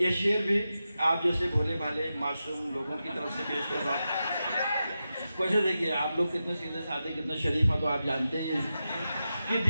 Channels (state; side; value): inverted; both; correlation -0.90